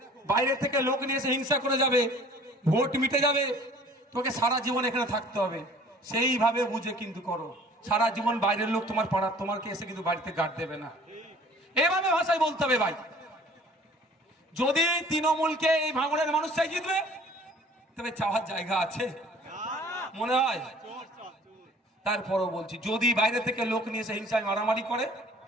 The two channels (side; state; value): both; normal; correlation 0.51